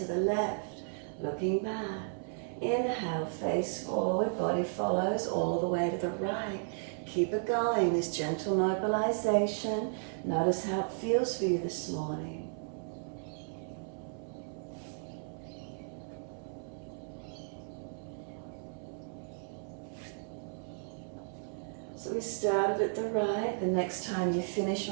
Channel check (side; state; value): left; silent; 55 dB below the other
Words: the left, looking back. Inhale, face forward, body follows all the way to the right. Keep it going, this gentle mobilization. Notice how it feels for you this morning. So we started at the right. The next time you finish